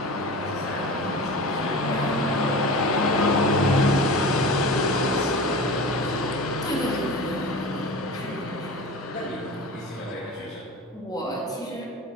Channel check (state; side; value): normal; both; correlation 0.33